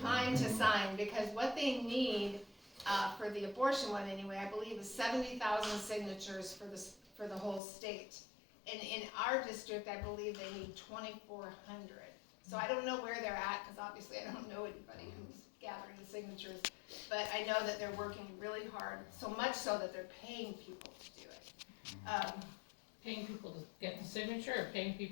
to sign, because what they need for the abortion one anyway, I believe, is 70,000 signatures for the whole state. And in our district, I believe they need 2,400. So I don't know where they're at, because obviously I don't know anybody who's gathering the signatures. But I know that they're working really hard, so much so that they're paying people to do it. Paying people to get the signature, or paying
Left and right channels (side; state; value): right; drops out; at 7.6 s